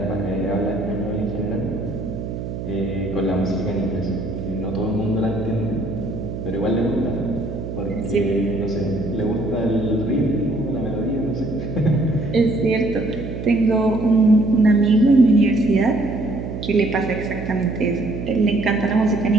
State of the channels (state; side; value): noise; right; hum, 7 dB below the sound